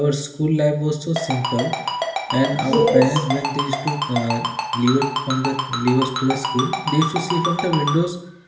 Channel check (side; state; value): both; identical; correlation 1.00